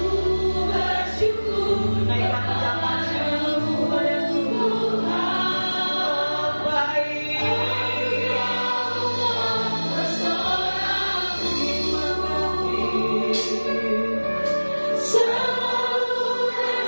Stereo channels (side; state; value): both; inverted; correlation -1.00